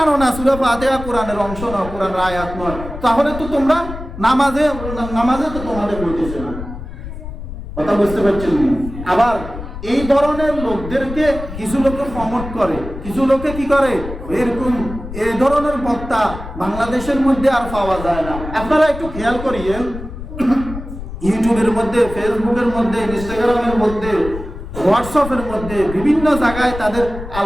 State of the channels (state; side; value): noise; left; rumble, 10 dB below the sound